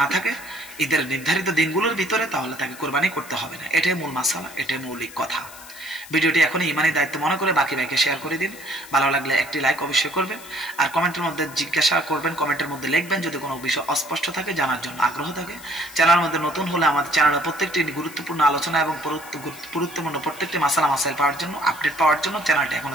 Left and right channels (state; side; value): noise; left; hiss, 17 dB below the sound